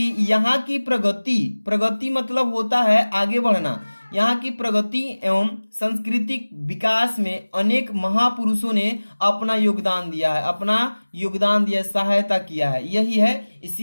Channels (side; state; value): both; inverted; correlation -1.00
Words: यहाँ की प्रगति मतलब होता है आगे बढ़ना, यहाँ की प्रगति एवं सांस्कृतिक विकास में अनेक महापुरुषों ने अपना योगदान दिया है, सहायता किया है, यही है,